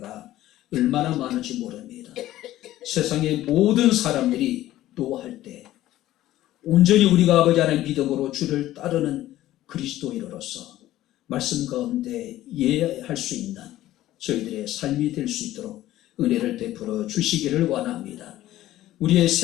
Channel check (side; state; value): right; quieter; 14.6 dB